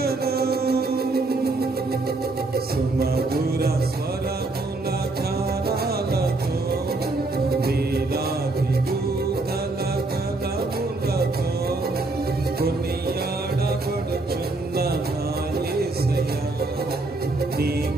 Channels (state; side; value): quieter; left; 3.2 dB